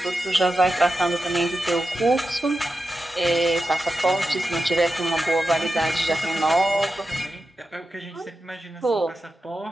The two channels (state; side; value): normal; both; correlation 0.90